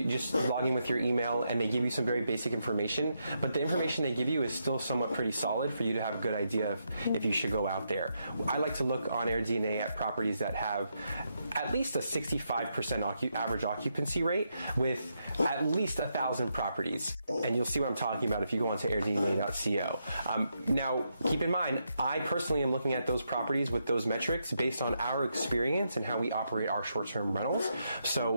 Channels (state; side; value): inverted; both; correlation -0.81